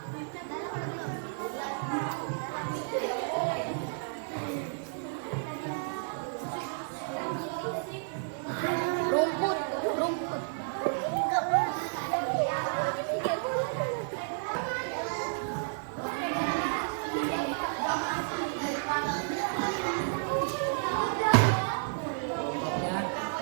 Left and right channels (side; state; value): left; silent; digital silence